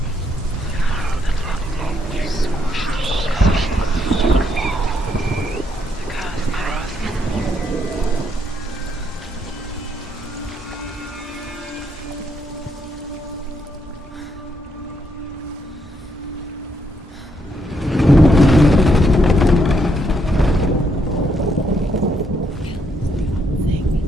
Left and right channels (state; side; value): normal; both; correlation 0.75